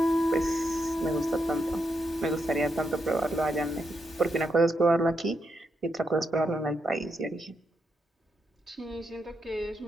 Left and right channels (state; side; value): normal; both; correlation 0.82